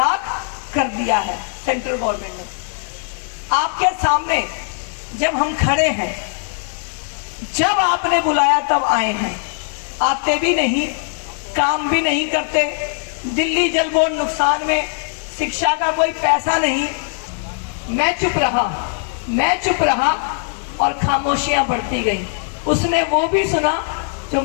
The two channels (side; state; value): right; silent; digital silence